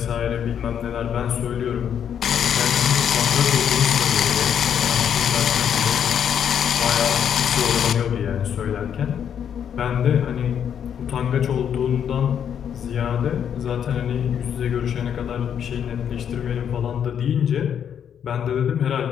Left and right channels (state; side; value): quieter; right; 8.6 dB